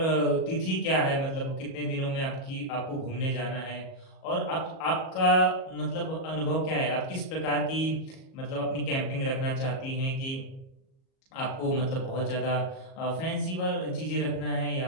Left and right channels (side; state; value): right; late; 37 ms